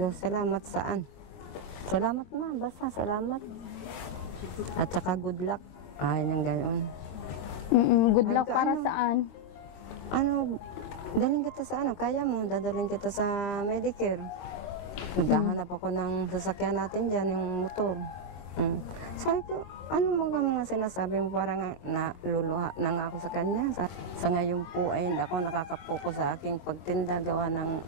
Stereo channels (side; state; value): right; late; 22 ms